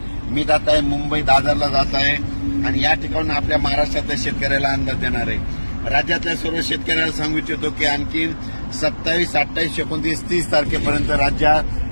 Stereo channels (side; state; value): both; inverted; correlation -1.00